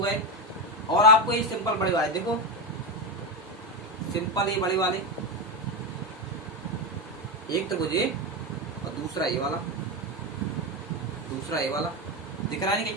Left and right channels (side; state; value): both; normal; correlation 0.12